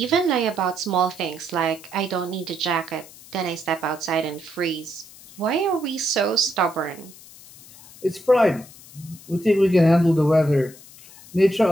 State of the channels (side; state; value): left; noise; hiss, 20 dB below the sound